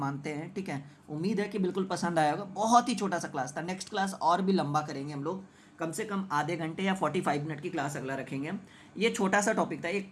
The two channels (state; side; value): identical; both; correlation 1.00